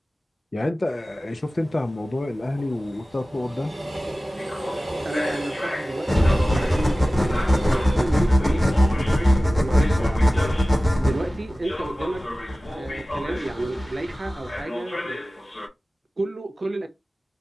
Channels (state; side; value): normal; both; correlation 0.97